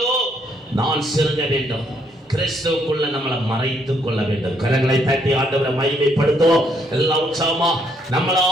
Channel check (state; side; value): normal; both; correlation 0.71